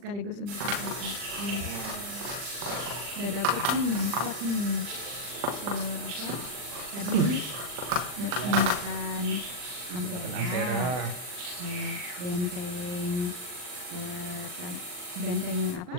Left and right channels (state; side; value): late; left; 40 ms